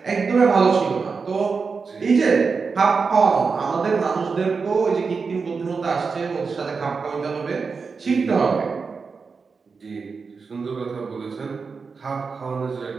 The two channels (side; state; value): left; quieter; 5.0 dB